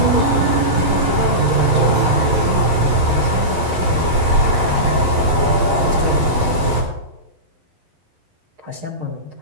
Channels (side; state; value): left; late; 11 ms